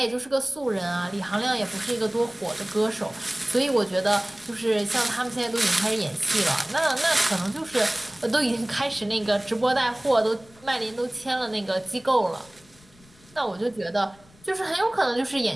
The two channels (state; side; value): noise; left; rumble, 27 dB below the sound